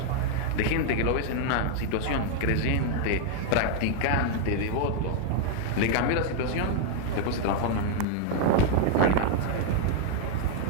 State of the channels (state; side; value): different; both; correlation 0.00